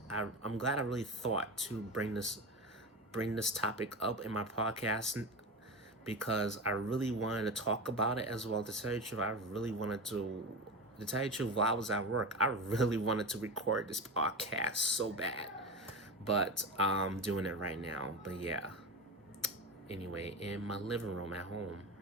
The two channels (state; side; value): normal; both; correlation 0.24